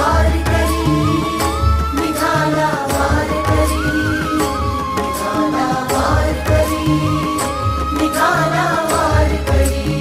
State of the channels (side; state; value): both; identical; correlation 1.00